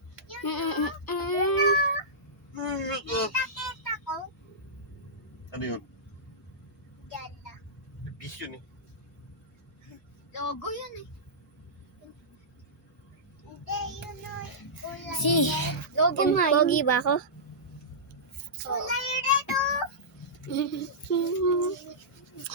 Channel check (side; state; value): both; normal; correlation -0.16